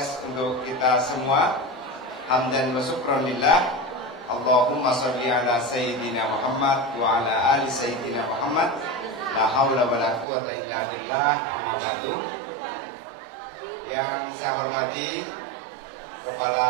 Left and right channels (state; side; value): drops out; left; at 10.2 s